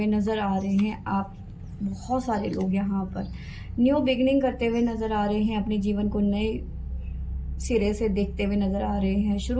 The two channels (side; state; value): both; identical; correlation 1.00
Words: नज़र आ रहे हैं आप। बहुत सारे लोग यहाँ पर न्यू बिगनिंग करते हुए नज़र आ रहे हैं, अपने जीवन को नए सिरे से देखते हुए नज़र आ रहे हैं,